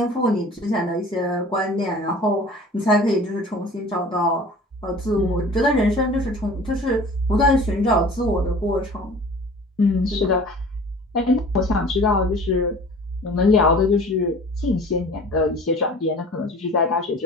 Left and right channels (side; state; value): both; normal; correlation 0.44